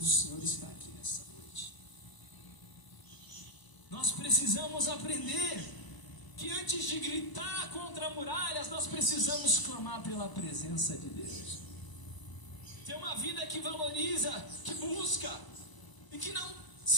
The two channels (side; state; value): right; late; 1.0 ms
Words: Senhor está aqui nessa noite. Nós precisamos aprender que antes de gritar contra muralhas, nós precisamos clamar pela presença de Deus. Ter uma vida que valoriza, que busca e que não